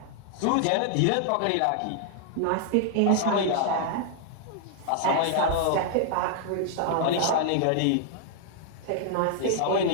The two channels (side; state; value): both; different; correlation -0.01